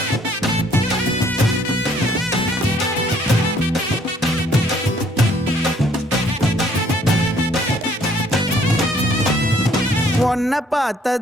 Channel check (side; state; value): both; normal; correlation 0.62